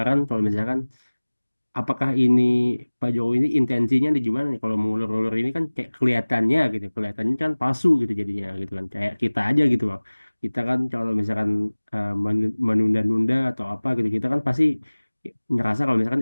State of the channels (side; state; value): both; inverted; correlation -1.00